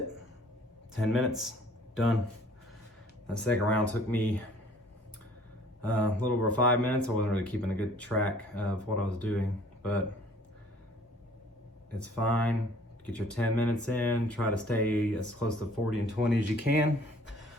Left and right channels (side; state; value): both; normal; correlation 0.55